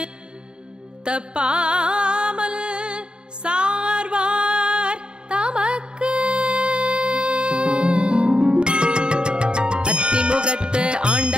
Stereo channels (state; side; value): late; left; 0.050 ms